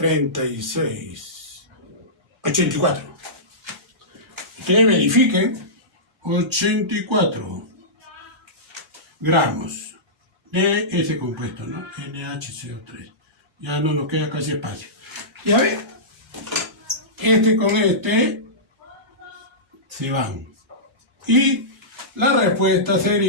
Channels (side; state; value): both; normal; correlation -0.18